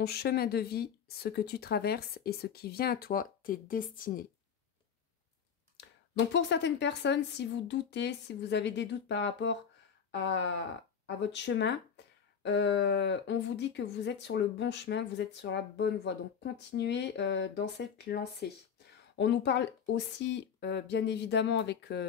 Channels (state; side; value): quieter; right; 7.2 dB